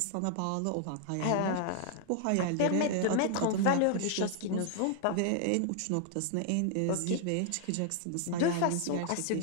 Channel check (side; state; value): both; different; correlation 0.00